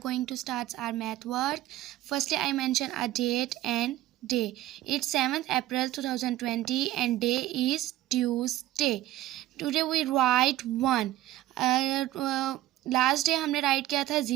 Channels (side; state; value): left; quieter; 14.9 dB